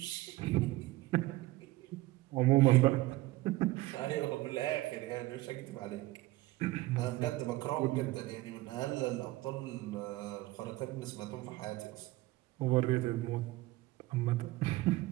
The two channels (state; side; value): quieter; left; 18.7 dB